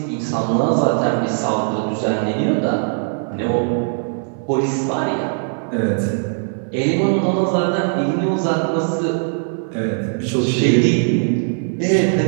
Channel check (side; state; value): left; silent; digital silence